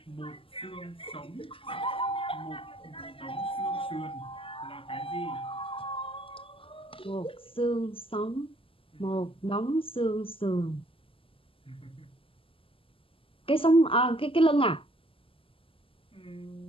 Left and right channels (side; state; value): right; late; 0.26 ms